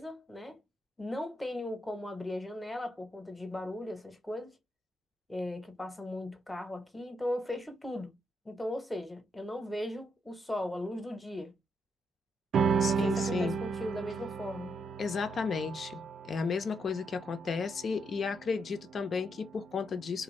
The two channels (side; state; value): both; normal; correlation 0.79